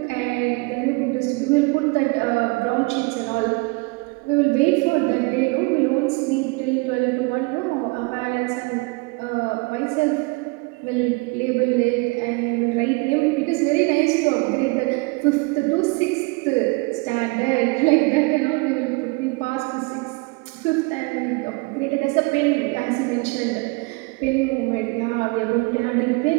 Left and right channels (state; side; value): quieter; left; 27.4 dB